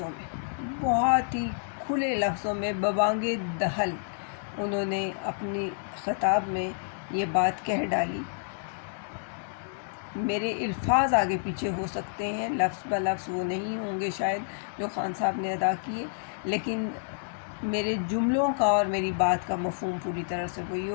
میں، بہت ہی کھلے لفظوں میں ببانگ دہل انہوں نے اپنی خطاب میں یہ بات کہہ ڈالی۔ میرے الفاظ آگے پیچھے ہو سکتے ہیں، لفظ بہ لفظ وہ نہیں ہوں گے شاید جو خان صاحب نے ادا کیے، لیکن میرے جملوں کا اور میری بات کا مفہوم پوری طرح سے وہی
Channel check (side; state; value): right; silent; digital silence